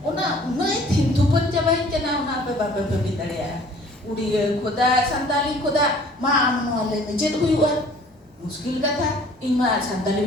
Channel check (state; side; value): normal; both; correlation 0.52